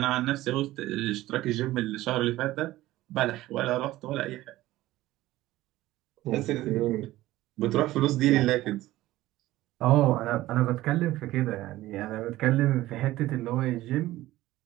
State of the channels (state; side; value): quieter; left; 16.4 dB